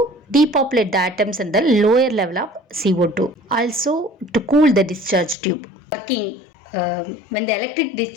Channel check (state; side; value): drops out; right; at 5.4 s